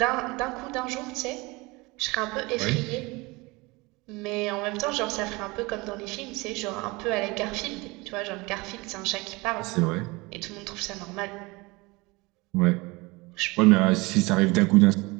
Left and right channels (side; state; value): left; quieter; 24.2 dB